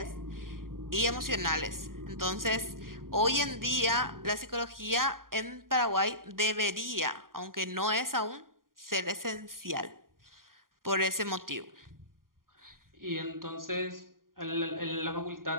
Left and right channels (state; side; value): late; left; 0.91 ms